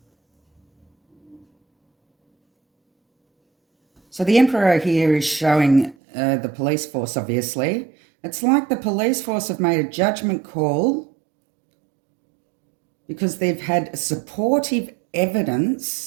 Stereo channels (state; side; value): drops out; left; at 6.0 s